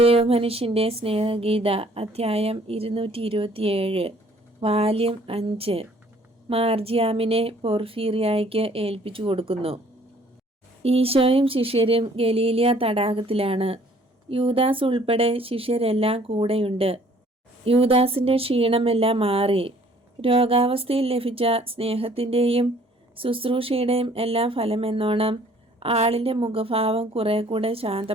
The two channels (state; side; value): normal; both; correlation 0.58